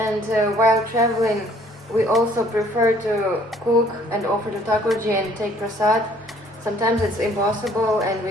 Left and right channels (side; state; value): both; normal; correlation 0.59